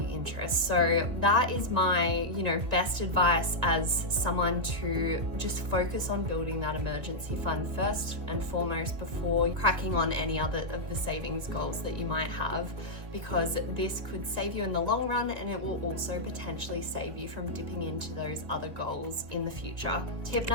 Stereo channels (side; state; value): left; late; 2.0 ms